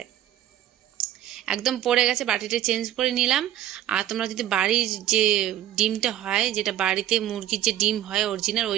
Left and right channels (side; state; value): left; quieter; 12.4 dB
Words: একদম পড়ে গেছে, বাটিটা চেঞ্জ করে নিলাম। আর তোমরা যদি বাড়ির যে ডিমটা হয়, যেটা বাড়িতে মুরগির যে ডিম হয় অরিজিনাল, ওই